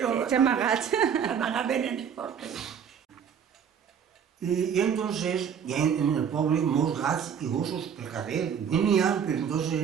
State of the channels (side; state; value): left; quieter; 7.8 dB